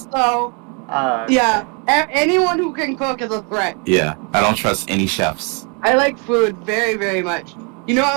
So, yeah, anyone who can cook is a threat. Yeah, I don't trust any chefs. I like food very, very much. You know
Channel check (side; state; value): left; quieter; 34.2 dB